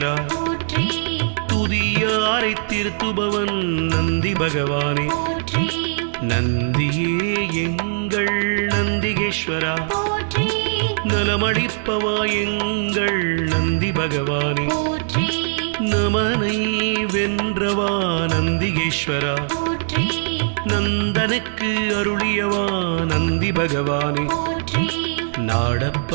போற்றி துதியாரை திருத்துபவன் நந்தி பகவானே போற்றி நந்தியே எங்கள் நந்திகேஸ்வரா போற்றி நலமளிப்பவா எங்கள் நந்தி பகவானே போற்றி நமனை வென்றவா நந்திகேஸ்வரா போற்றி நந்தனுக்கு அருளியவா நந்தி பகவானே போற்றி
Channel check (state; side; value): silent; left; digital silence